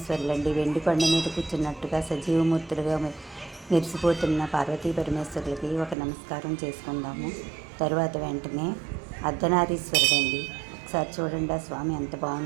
వెండి కొండ మీద కూర్చున్నట్టుగా సజీవమూర్తులుగా మెరిసిపోతున్న పార్వతీ పరమేశ్వరులకి ఒక నమస్కారం చేసుకుందాము. తరువాత వెంటనే అర్ధనారీశ్వరుడండి. ఒకసారి చూడండి ఆ స్వామి ఎంత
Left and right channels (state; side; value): drops out; left; at 6.0 s